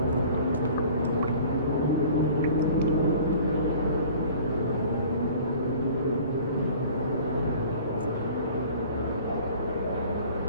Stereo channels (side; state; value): both; inverted; correlation -0.47